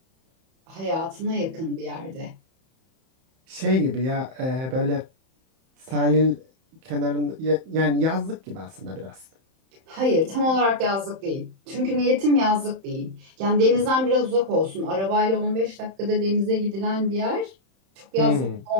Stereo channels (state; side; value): late; left; 31 ms